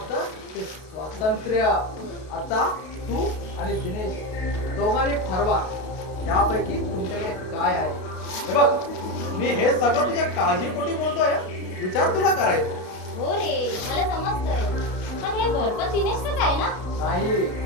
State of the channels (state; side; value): late; right; 32 ms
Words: ते स्वातंत्र्य. आता तू आणि दिनेश दोघांनी ठरवा यापैकी तुमच्याकडे काय आहे. हे बघ मी हे सगळं तुझ्या काळजीपोटी बोलतोय. विचार तुला करायचा. हो रे मला समजतंय. पण हे घर पण दिनेशच आहे ना? नाही